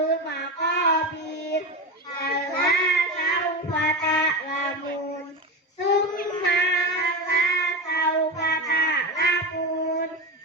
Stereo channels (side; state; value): both; normal; correlation 0.20